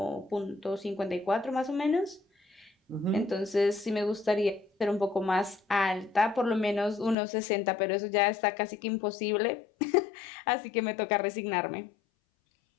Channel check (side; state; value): right; drops out; at 7.2 s